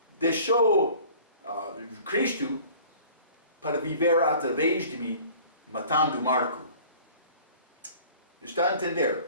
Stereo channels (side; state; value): both; inverted; correlation -0.48